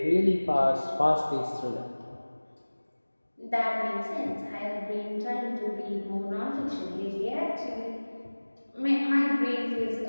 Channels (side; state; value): both; inverted; correlation -1.00